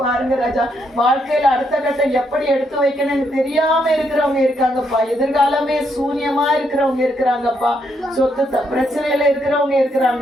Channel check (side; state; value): both; normal; correlation 0.76